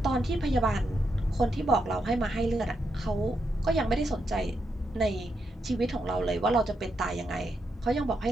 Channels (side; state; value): both; normal; correlation 0.82